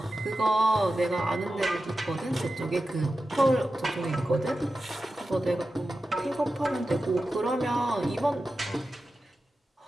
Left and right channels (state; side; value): normal; both; correlation 0.92